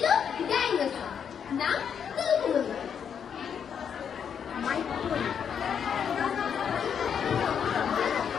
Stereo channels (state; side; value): quieter; right; 7.6 dB